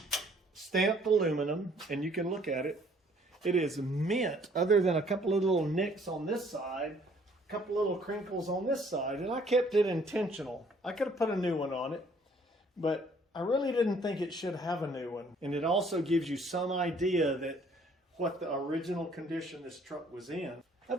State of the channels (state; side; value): normal; both; correlation 0.61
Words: stamped aluminum, and you can look at it. It is mint, other than a couple of little nicks on this side, a couple little crinkles on this side, and I kept it intentional. I could have put a new one on it, but I really didn't think it should have a new one. And it also gives you some idea that what the original condition this truck was in.